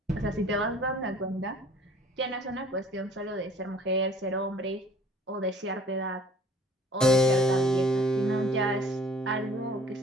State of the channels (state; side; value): normal; both; correlation 0.53